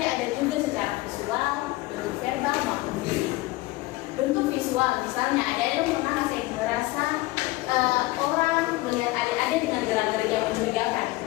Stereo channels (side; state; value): right; quieter; 19.7 dB